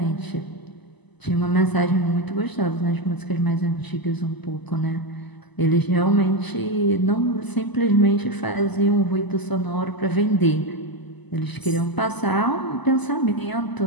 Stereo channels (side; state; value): right; late; 1.0 ms